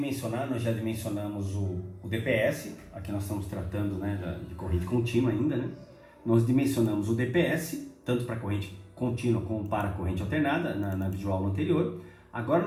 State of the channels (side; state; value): both; identical; correlation 1.00